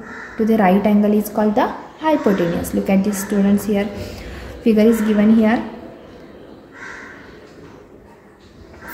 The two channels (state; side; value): identical; both; correlation 1.00